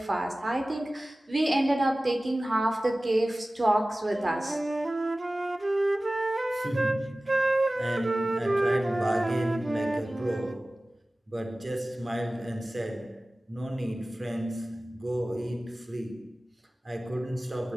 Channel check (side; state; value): both; normal; correlation 0.97